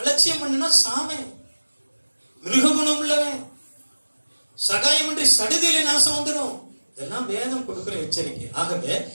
பண்ணுனா சாமே, மிருககுணம் உள்ளவன், சகாயமின்றி சடுதியிலே நாசம் வந்துடும். இதெல்லாம் வேதம் கொடுக்கிற எச்சரிக்கை. ஆகவே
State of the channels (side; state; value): both; inverted; correlation -1.00